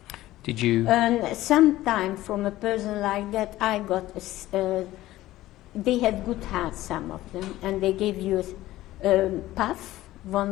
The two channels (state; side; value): quieter; right; 15.9 dB